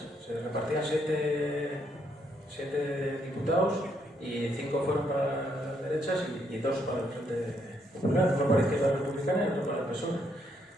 Se repartían 7 diputados y 5 fueron para las derechas y 2 para el Frente Popular, uno para la Izquierda Republicana y otro para el PSOE.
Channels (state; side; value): normal; both; correlation 0.74